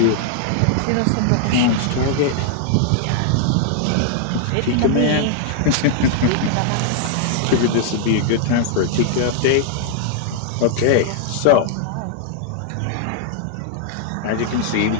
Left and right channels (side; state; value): both; different; correlation -0.01